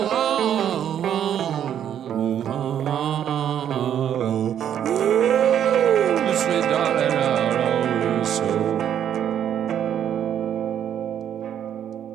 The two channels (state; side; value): quieter; left; 9.7 dB